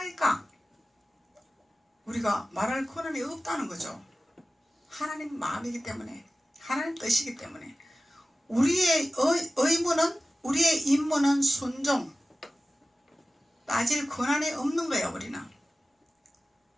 우리가 말할 권한이 없다는 거죠. 하나님 마음이기 때문에 하나님 뜻이기 때문에 우리의 의무는 우리의 임무는 순종 따질 권한이 없는 거예요. 우리는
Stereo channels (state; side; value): normal; both; correlation 0.95